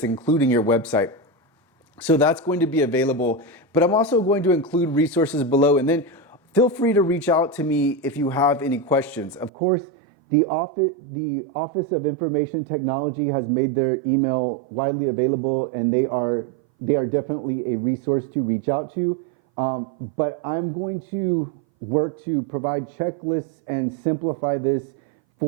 including your website. So that's going to be available, but I'm also going to include resources below, and then feel free to reach out to me if you have any questions. Of course, the Office of Information Technology has made their email widely available, and they are definitely a resource to reach out to. But I'm going to work to provide checklists and simplify this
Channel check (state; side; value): drops out; left; at 9.5 s